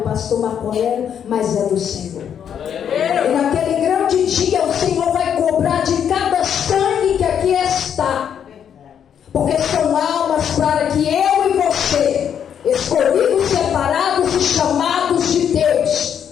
Marco Aurélio, mas é do Senhor. E naquele grande dia, o Senhor vai cobrar de cada sangue que aqui está. Porque são almas para que eu e você, escolhidos, separados e chamados de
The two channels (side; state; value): right; quieter; 8.6 dB